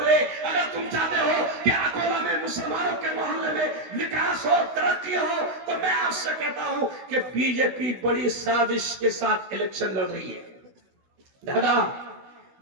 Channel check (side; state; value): left; late; 16 ms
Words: अगर तुम चाहते हो कि अकोला में मुसलमानों के मोहल्ले में विकास हो, तरक्की हो, तो मैं आपसे कहता हूं कि बीजेपी बड़ी साजिश के साथ इलेक्शन लड़ रही है। दादा,